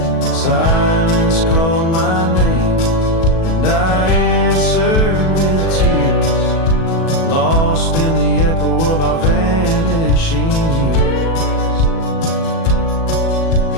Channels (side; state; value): right; late; 37 ms